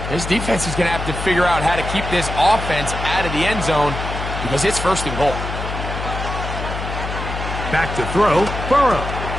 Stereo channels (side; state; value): left; noise; hum, 6 dB below the sound